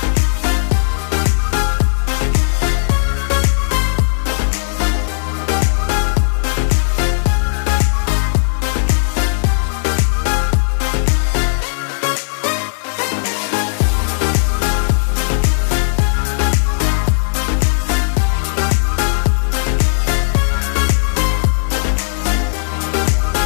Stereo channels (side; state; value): right; silent; digital silence